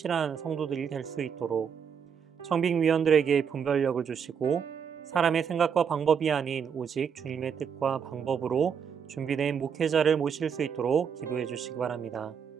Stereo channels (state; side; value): quieter; left; 7.2 dB